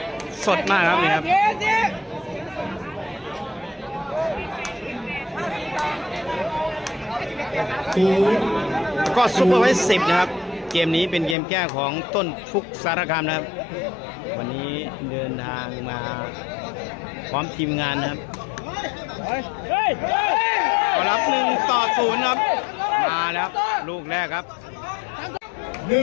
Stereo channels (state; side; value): drops out; right; at 11.4 s